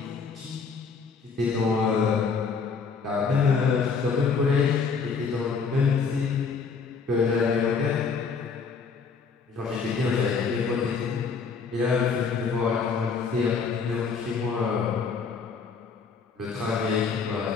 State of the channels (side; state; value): right; quieter; 5.3 dB